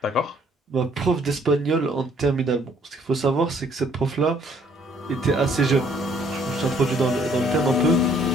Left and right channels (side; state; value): both; normal; correlation 0.63